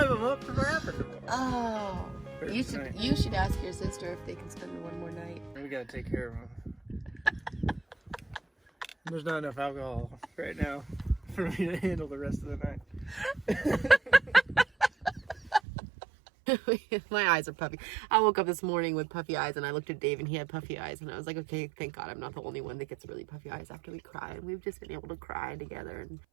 them up to Rapid tomorrow. Oh. You should ask your sister if they can spend one more night. We gotta take care of them. There's not enough alcohol right now for me to handle the rest of the night. My eyes are puffy. I woke up this morning with puffy eyes and I looked at Dave and he had puffy eyes and I was like, okay, thank God I'm not the only one that gets really puffy eyes after we cry. And we've just been able to cry together. And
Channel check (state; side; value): drops out; left; at 15.6 s